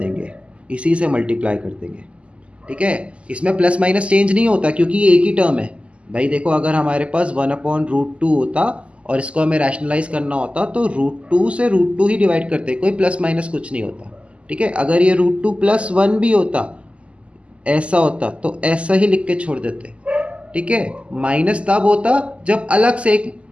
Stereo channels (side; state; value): left; late; 0.058 ms